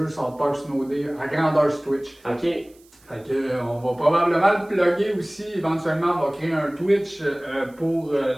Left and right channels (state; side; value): noise; right; hiss, 30 dB below the sound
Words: South Park Snow Day à grandeur sur Twitch. Ok. Fait que, on va probablement le plugger aussi, éventuellement on va créer un Twitch pour